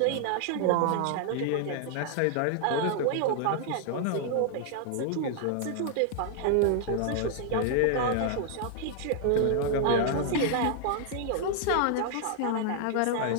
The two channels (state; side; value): different; both; correlation 0.00